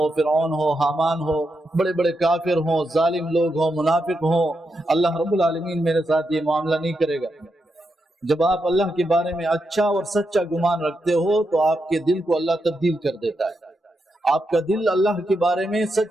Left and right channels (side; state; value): both; normal; correlation 0.84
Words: فرعون ہو، حامان ہو، بڑے بڑے کافر ہوں، ظالم لوگ ہوں، منافق ہوں، اللہ رب العالمین میرے ساتھ یہ معاملہ نہیں کرے گا۔ جب آپ اللہ کے بارے میں اچھا اور سچا گمان رکھتے ہو تو آپ کے دل کو اللہ تبدیل کر دیتا ہے، آپ کا دل اللہ کے بارے میں